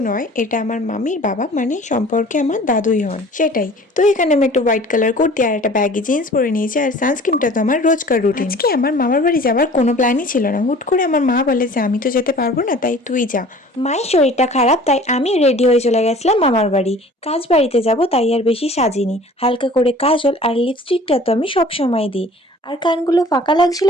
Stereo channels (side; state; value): both; normal; correlation 0.47